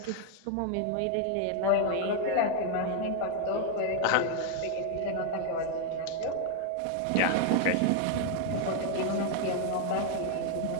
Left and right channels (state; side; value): different; both; correlation 0.00